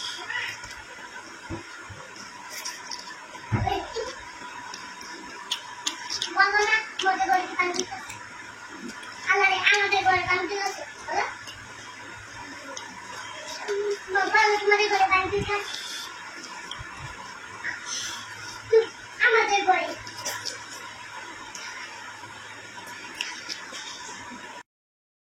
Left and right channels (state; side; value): identical; both; correlation 1.00